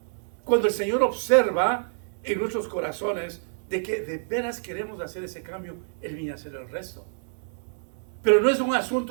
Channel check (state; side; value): silent; left; digital silence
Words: Cuando el Señor observa en nuestros corazones de que de veras queremos hacer ese cambio, Él viene a hacer el resto. Pero no es un